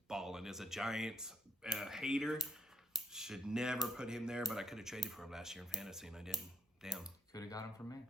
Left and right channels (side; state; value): both; normal; correlation 0.73